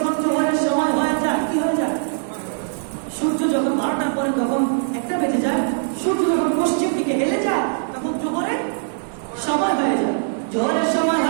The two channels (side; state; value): left; silent; digital silence